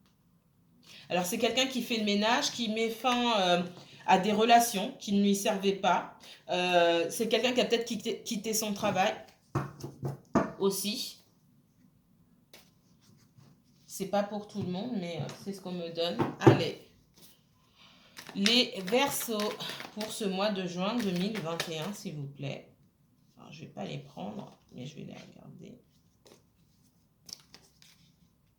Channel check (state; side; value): identical; both; correlation 1.00